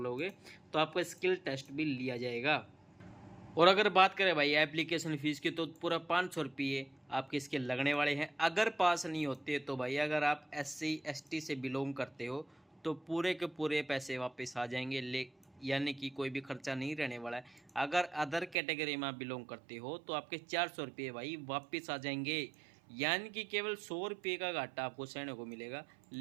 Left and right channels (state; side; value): drops out; left; at 18.6 s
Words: तो आपका स्किल टेस्ट भी लिया जाएगा। और अगर बात करें भाई एप्लीकेशन फ़ीस की, तो पूरा 500 रुपये आपके इसके लगने वाले हैं। अगर पास नहीं होते तो भाई अगर आप SC ST से बिलोंग करते हो तो पूरे के पूरे पैसे वापस आ जाएंगे, यानी कि कोई भी खर्चा नहीं रहने वाला है। अगर अदर कैटेगरी में आप बिलोंग करते हो तो आपके 400 रुपये भाई वापस आ जाएंगे, यानी कि केवल 100 रुपये का घाटा आपको सहने को मिलेगा।